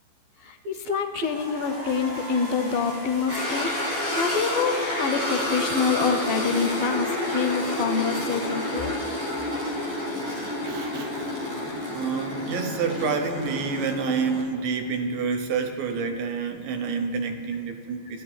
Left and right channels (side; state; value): left; late; 15 ms